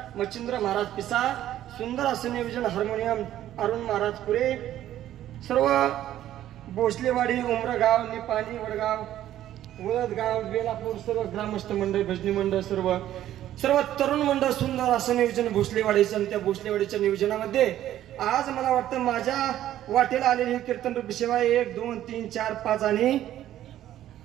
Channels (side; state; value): left; quieter; 12.5 dB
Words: मच्छिंद्र महाराज पिसा सुंदर असं नियोजन हार्मोनियम अरुण महाराज पुरे सर्व भोसलेवाडी उमरगाव निपाणी वडगाव वळदगाव बेलापूर सर्व ग्रामस्थ मंडळ भजनी मंडळ सर्व तरुण मंडळ सुंदर असं नियोजन भोसलेवाडीचं आणि त्या भोसलेवाडीच्या नियोजनामध्ये आज मला वाटतं माझ्या वाटेला आलेली कीर्तन रूपी सेवा 1 2 3 4 5 आणि